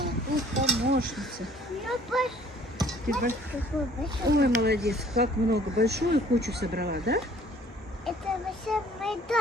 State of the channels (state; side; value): normal; both; correlation 0.56